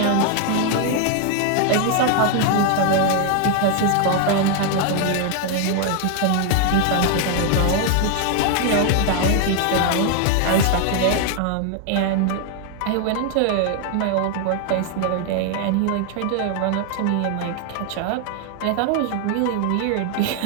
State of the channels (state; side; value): different; both; correlation 0.00